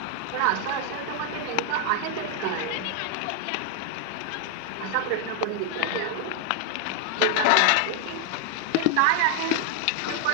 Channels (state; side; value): different; both; correlation 0.00